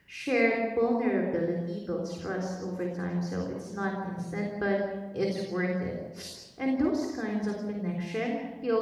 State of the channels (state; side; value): identical; both; correlation 1.00